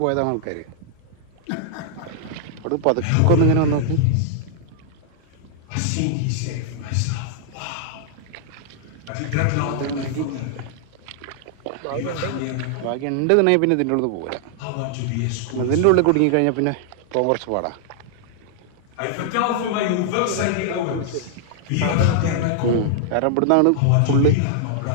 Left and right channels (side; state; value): both; different; correlation -0.01